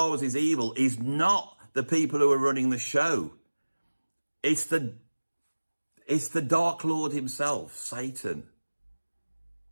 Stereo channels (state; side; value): inverted; both; correlation -1.00